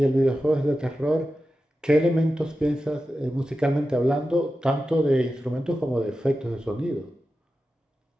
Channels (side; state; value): both; normal; correlation 0.92